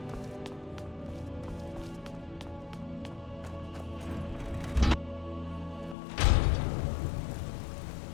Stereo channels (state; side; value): drops out; right; at 6.0 s